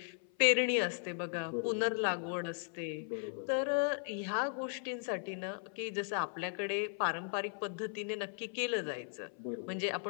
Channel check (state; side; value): silent; right; 53 dB below the other